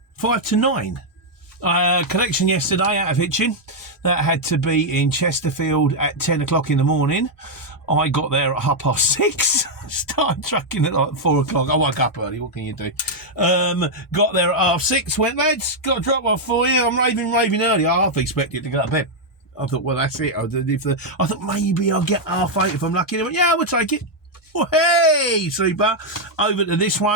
to 9. Collection yesterday out of Hitchin. That had to be in Chesterfield at 10 o'clock in the morning. I got there at 6:30. Started trucking at like 4 o'clock. I woke up early. What can you do? Got there at 6:30. Went, lads, got a drop off for you. I'm raving early. I half expected to go to bed. I thought, well, that's it. I thought maybe I'll get 8:30 if I'm lucky. They went, yeah, we'll take it. Well, hey, super. Over to this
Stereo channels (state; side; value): normal; both; correlation -0.01